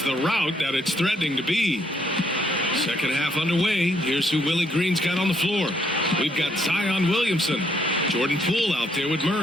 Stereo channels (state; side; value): normal; both; correlation 0.71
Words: the rout that it's threatening to be. Second half underway. Here's who Willie Green's got on the floor. We've got Zion Williamson, Jordan Poole out there with